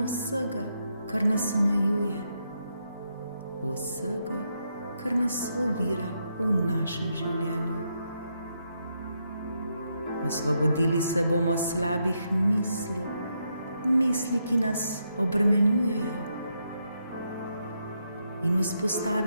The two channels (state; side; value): inverted; both; correlation -0.80